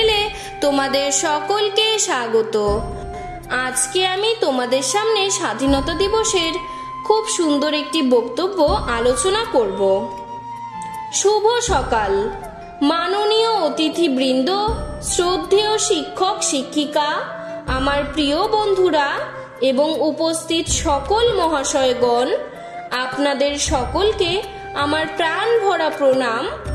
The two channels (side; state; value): both; identical; correlation 1.00